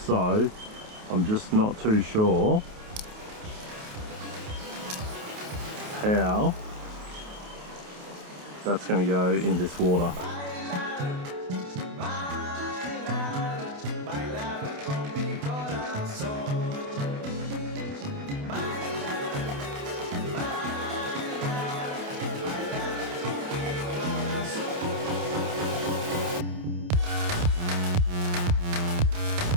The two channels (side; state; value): left; late; 28 ms